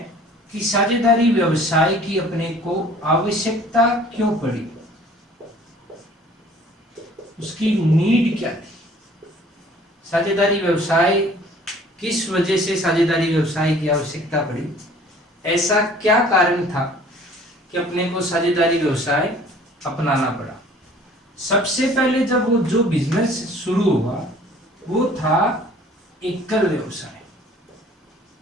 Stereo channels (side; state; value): both; normal; correlation 0.52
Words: कि साझेदारी व्यवसाय की अपने को आवश्यकता क्यों पड़ी, उसकी नीड क्या थी। साझेदारी व्यवसाय किस वजह से साझेदारी व्यवसाय की आवश्यकता पड़ी, ऐसा क्या कारण था कि अपने को साझेदारी व्यवसाय अपनाना पड़ा। सबसे पहले जब वो जो बिजनेस शुरू हुआ वो था एकल व्यवसाय।